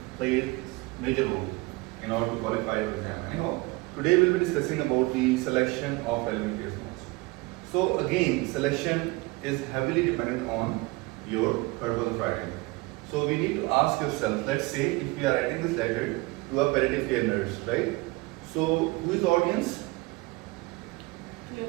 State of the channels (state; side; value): quieter; left; 23.8 dB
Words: play major role in order to qualify your exam. Anyhow, today we'll be discussing about the selection of relevant case notes. So again, selection is heavily dependent on your purpose of writing. So we need to ask yourself, let's say if we are writing this letter to a palliative care nurse, right? So who is the audience?